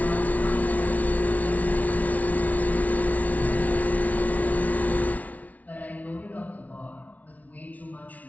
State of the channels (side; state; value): right; late; 0.072 ms